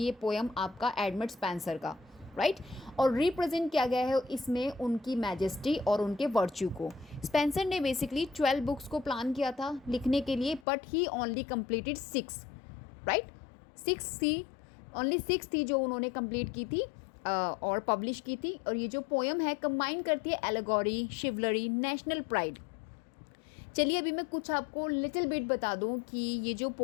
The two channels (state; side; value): drops out; right; at 10.7 s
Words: पोएम आपका एडमंड स्पेंसर का, राइट. और रिप्रेजेंट किया गया है इसमें उनकी मैजेस्टी और उनके वर्च्यू को. स्पेंसर ने बेसिकली 12 बुक्स को प्लान किया था लिखने के लिए, but he only completed 6, right. 6 थी, ओनली 6 थी जो उन्होंने कंप्लीट की थी और पब्लिश की थी. और ये जो पोएम है कंबाइन करती है एलेगोरी, शिवलरी, नेशनल प्राइड. चलिए अभी मैं कुछ आपको लिटिल बिट बता दूं कि ये जो